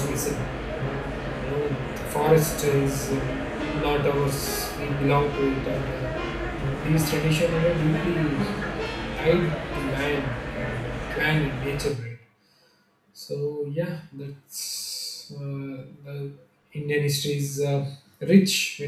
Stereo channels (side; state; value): both; identical; correlation 1.00